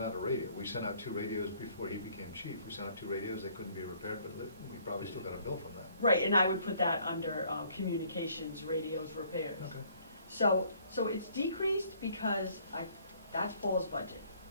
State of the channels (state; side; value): inverted; both; correlation -0.61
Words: out a radio. We sent out 2 radios before he became chief. We sent out 2 radios, they couldn't be repaired, but we probably still got a bill from that. right, and I would put that under communications, radios, repairs. Okay. So it's decreased because that's Paul's budget.